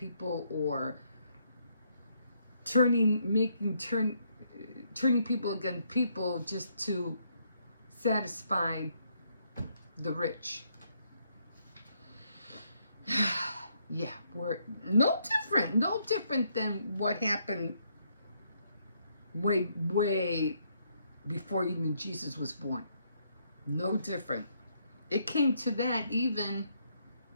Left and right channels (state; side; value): inverted; both; correlation -0.73